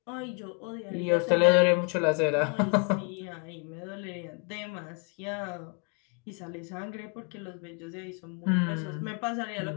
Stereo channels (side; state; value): right; quieter; 37.1 dB